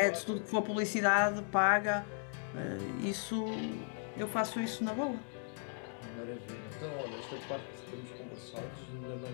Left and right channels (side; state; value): right; silent; 53 dB below the other